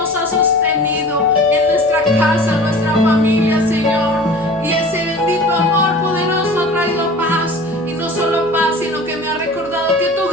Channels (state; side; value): noise; right; hum, 24 dB below the sound